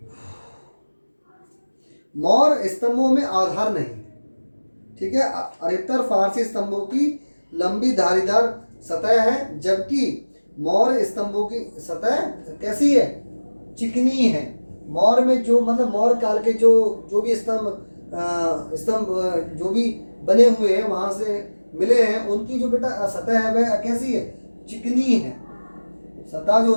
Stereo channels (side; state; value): both; inverted; correlation -1.00